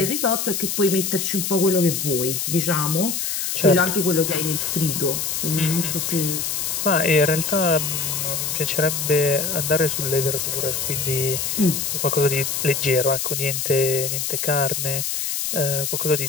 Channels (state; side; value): noise; left; hiss, 1 dB below the sound